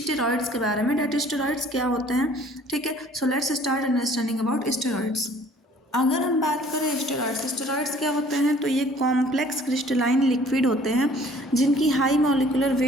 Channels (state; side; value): normal; both; correlation 0.54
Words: के बारे में, डेट स्टेरॉइड्स क्या होते हैं, ठीक है। So let's start understanding about steroids. अगर हम बात करें स्टेरॉइड्स क्या होते हैं, तो ये कॉम्प्लेक्स क्रिस्टलाइन लिक्विड होते हैं जिनकी हाई मॉलिक्यूलर